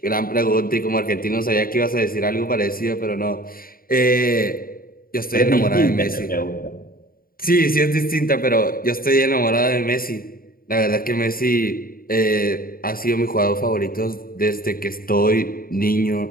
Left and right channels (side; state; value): right; late; 0.42 ms